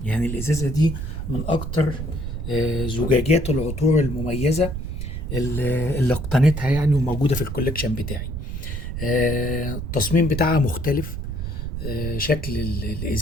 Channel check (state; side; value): noise; right; rumble, 5 dB below the sound